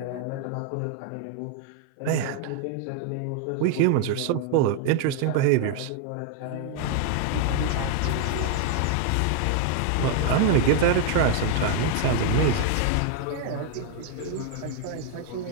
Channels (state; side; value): different; both; correlation 0.00